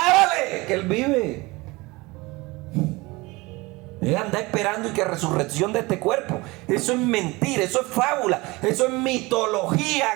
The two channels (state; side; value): quieter; left; 22.9 dB